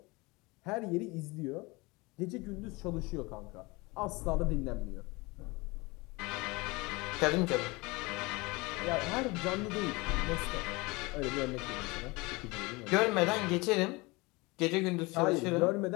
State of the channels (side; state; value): right; quieter; 24.5 dB